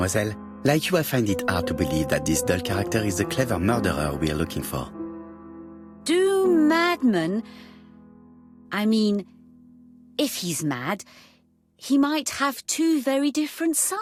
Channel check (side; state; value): both; identical; correlation 1.00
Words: Like you, I find it hard to believe that this dull character is the clever murderer we are looking for. Do madmen... I mean, if he's mad, he might have two very different